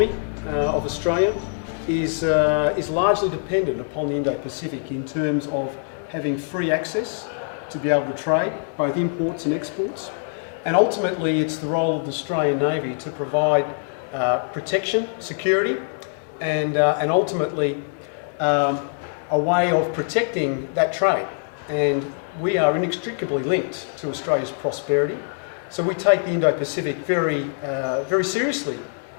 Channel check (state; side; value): silent; right; 63 dB below the other